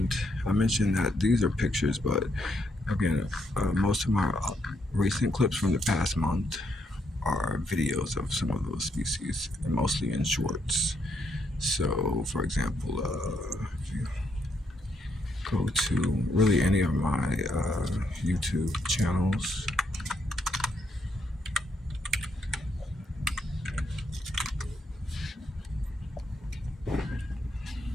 I mentioned that these are pictures, but again, most of my recent clips from the past month are videos of some of those species, and mostly in shorts. So, for example, if you go to really any of my YouTube channels,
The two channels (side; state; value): both; normal; correlation 0.76